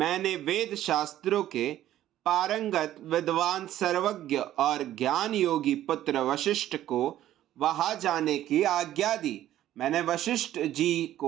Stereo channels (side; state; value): left; quieter; 12.9 dB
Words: वेद शास्त्रों के पारंगत विद्वान, सर्वज्ञ और ज्ञान योगी पुत्र वशिष्ठ को वहां जाने की आज्ञा दी। मैंने वशिष्ठ जी